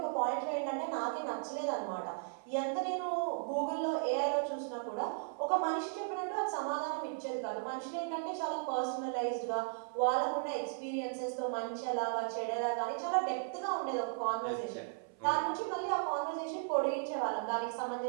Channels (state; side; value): silent; left; 54 dB below the other